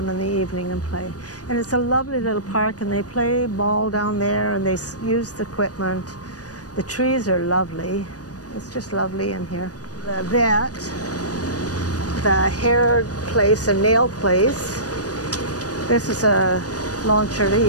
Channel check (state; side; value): late; right; 0.68 ms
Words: in the evening and play. And it's a lovely little park, and they play ball down there, and they use the equipment. The trees are lovely. It's just lovely in here. The vet, the hair place and nail place. This is a